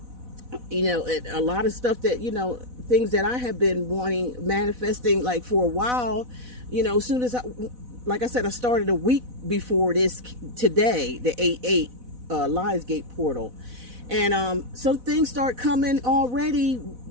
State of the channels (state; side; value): late; left; 4.1 ms